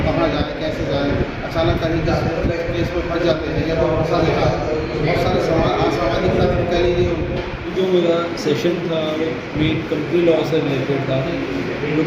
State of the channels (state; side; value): identical; both; correlation 1.00